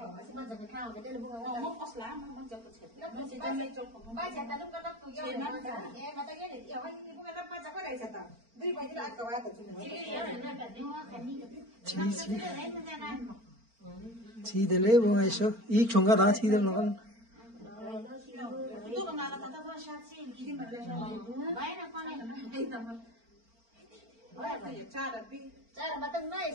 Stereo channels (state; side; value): late; left; 4.4 ms